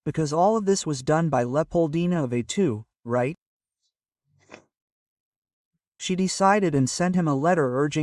because all of this was done by Leopoldina of A2, right? She decided and sent him a letter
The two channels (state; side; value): identical; both; correlation 1.00